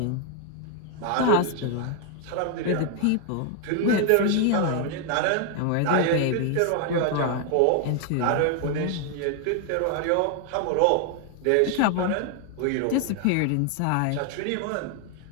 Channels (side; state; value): both; different; correlation 0.01